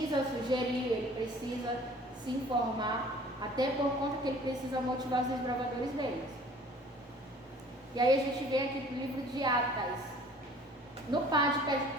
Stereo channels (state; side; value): normal; both; correlation 0.50